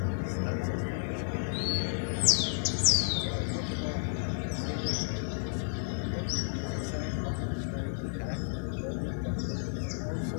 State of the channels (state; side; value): silent; right; digital silence